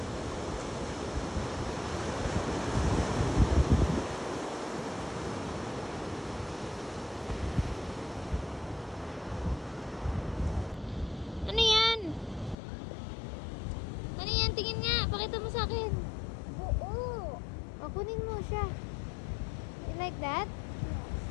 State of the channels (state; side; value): drops out; right; at 12.6 s